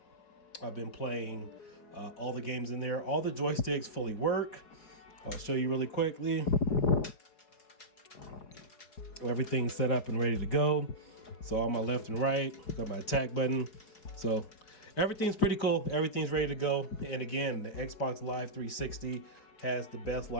I've been playing all the games in there. All the joysticks fully work. I'll show you really quickly. Everything's set up and ready to go. So on my left and right, got my attack button. So everything's pretty cool. Everything's ready to go. And again, the Xbox Live 360 has the best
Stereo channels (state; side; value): late; right; 4.7 ms